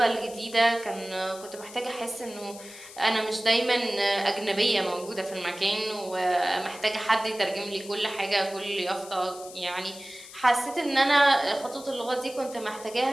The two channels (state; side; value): noise; left; hiss, 16 dB below the sound